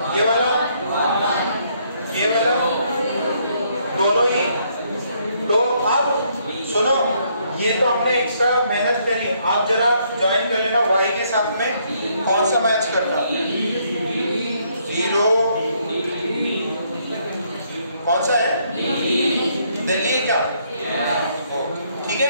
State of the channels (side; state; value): both; inverted; correlation -0.70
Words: ये वाला दोनों ही। तो अब सुनो, ये तो हमने एक्स्ट्रा मेहनत करी, आप जरा ज्वाइन कर लेना y के साथ में कौन सा मैच करना, 0 कौन सा है दिल्ली क्या, ठीक है।